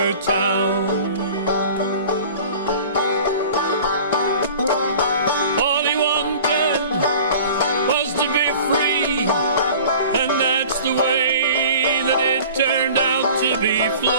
town. All he wanted was to be free, and that's the way that it turned out to be.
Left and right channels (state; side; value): inverted; both; correlation -0.44